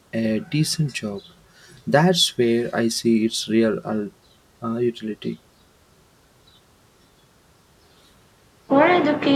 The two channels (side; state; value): both; identical; correlation 1.00